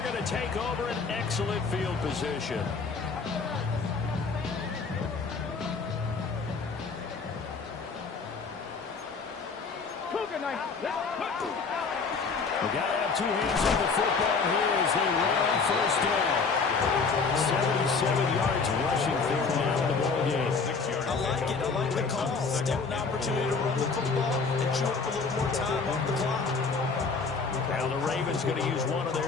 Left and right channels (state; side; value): quieter; right; 4.8 dB